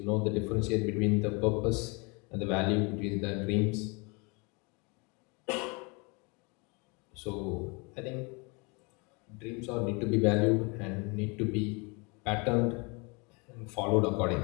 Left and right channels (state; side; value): quieter; right; 30.4 dB